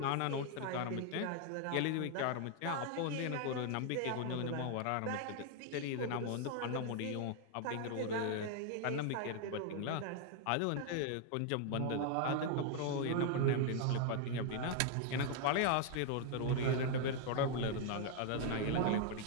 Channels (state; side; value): different; both; correlation 0.00